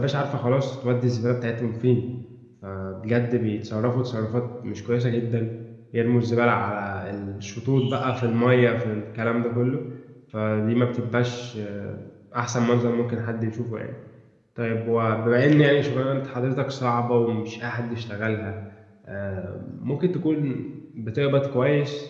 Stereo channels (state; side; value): identical; both; correlation 1.00